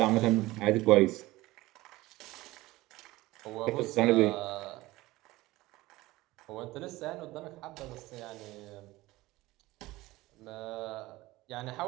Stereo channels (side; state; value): left; quieter; 18.9 dB